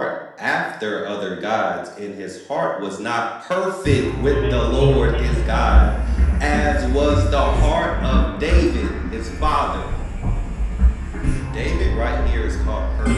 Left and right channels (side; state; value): both; identical; correlation 1.00